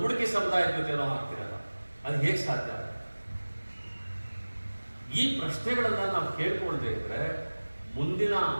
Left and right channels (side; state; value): both; inverted; correlation -1.00